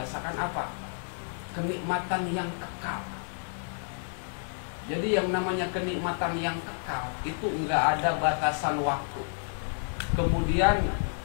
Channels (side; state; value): right; silent; digital silence